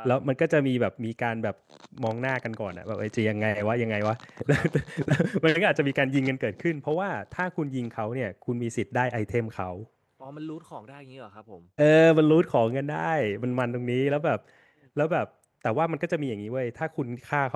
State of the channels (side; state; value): both; identical; correlation 1.00